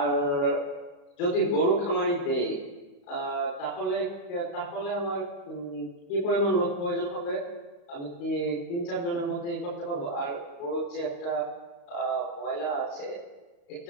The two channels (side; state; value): right; late; 35 ms